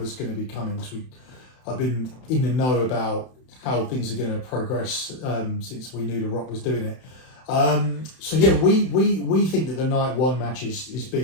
going to be coming. Because I've been in the know about how things are going to progress since we knew The Rock was doing it. So yeah, we think that the night one match is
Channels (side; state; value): right; late; 31 ms